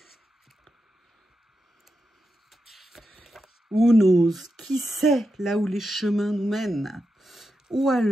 Who knows? Qui sait là où les chemins nous mènent? Ou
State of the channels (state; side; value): normal; both; correlation 0.88